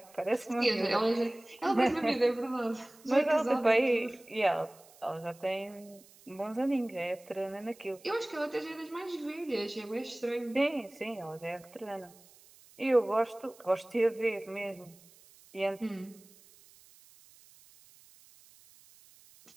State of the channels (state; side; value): noise; right; hiss, 25 dB below the sound